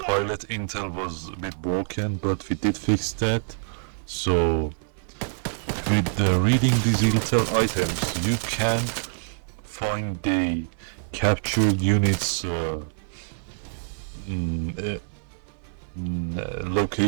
intel was a bit broken, but we did fix that. So with reading these intel items you can find the captured units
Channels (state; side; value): silent; left; 61 dB below the other